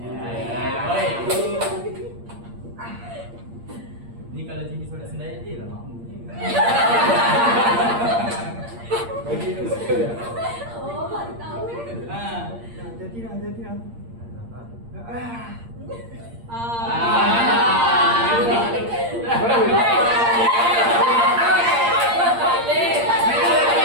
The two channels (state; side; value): late; left; 8.6 ms